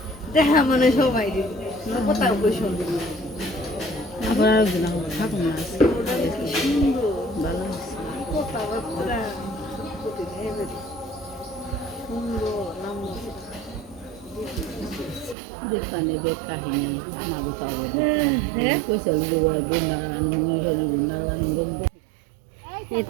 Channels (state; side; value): drops out; left; at 15.4 s